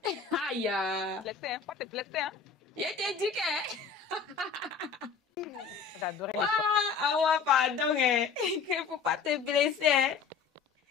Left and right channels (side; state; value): right; quieter; 5.8 dB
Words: Aïe! Blessé, hein? Pas te blesser, hein? Je t'ai dit que... Ah ouais, pardon, hein. Qu'il ne faut pas te blesser. Hein.